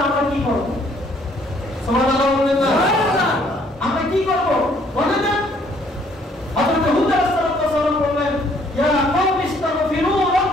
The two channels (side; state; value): both; normal; correlation 0.63